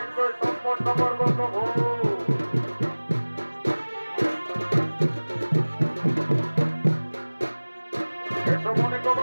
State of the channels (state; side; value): inverted; both; correlation -1.00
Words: সম্পন্ন করবো প্রভু। এসো মনে